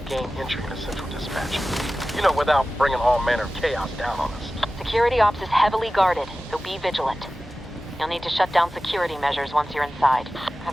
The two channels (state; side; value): normal; both; correlation 0.95